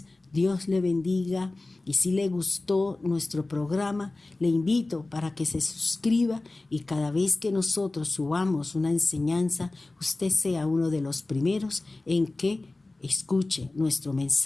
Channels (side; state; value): right; quieter; 3.1 dB